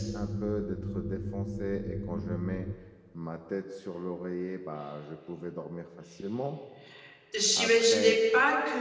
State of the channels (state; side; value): identical; both; correlation 1.00